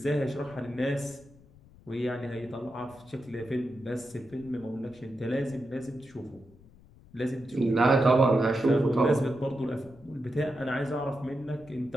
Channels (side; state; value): left; noise; rumble, 25 dB below the sound